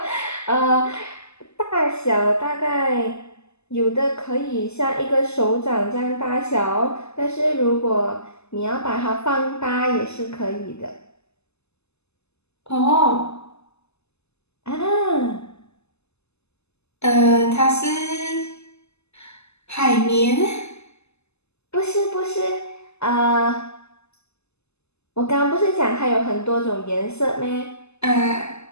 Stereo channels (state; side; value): late; right; 0.80 ms